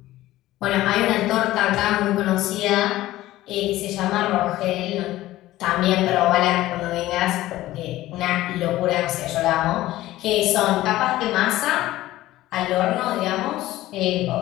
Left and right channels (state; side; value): quieter; right; 15.9 dB